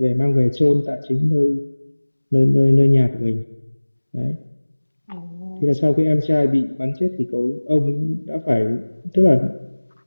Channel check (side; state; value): both; inverted; correlation -1.00